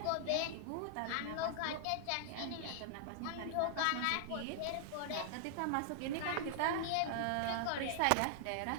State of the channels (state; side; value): different; both; correlation -0.01